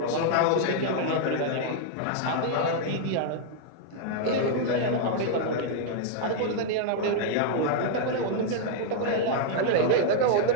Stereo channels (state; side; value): different; both; correlation -0.01